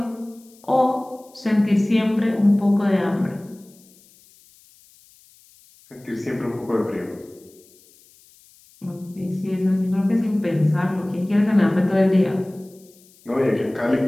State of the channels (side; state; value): left; noise; hiss, 28 dB below the sound